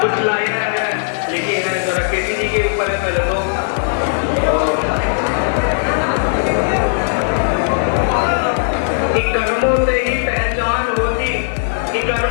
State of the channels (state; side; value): silent; right; digital silence